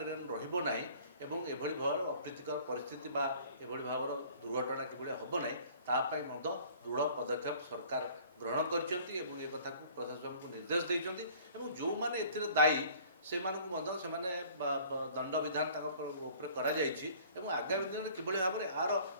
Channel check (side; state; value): both; inverted; correlation -0.51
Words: ରହିବ ନାହିଁ ଏବଂ ଏଭଳି ଭାବରେ ଅପ୍ରୀତିକର ପରିସ୍ଥିତି ବା ଏଭଳି ଭାବର ଦୁର୍ଘଟଣା କିଭଳି ହେବ ନାହିଁ ତା ପାଇଁ ମଧ୍ୟ ଦୃଢ଼ ପଦକ୍ଷେପ ସରକାର ଗ୍ରହଣ କରିଛନ୍ତି ଏବଂ ଏ କଥାକୁ ପ୍ରଶାସନକୁ ନିର୍ଦ୍ଦେଶ ଦେଇଛନ୍ତି ଏବଂ ଯେଉଁମାନେ ଏଥିରେ ଦାୟୀ ସେମାନଙ୍କୁ ମଧ୍ୟ ସେମାନେ ଦଣ୍ଡ ବିଧାନ ତାଙ୍କ ଉପରେ କରାଯାଇଛି ଏବଂ ଆଗାମୀ ଦିନରେ କିଭଳି ଭାବରେ ଆର